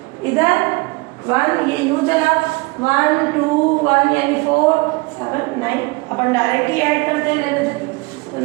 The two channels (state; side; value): quieter; left; 25.3 dB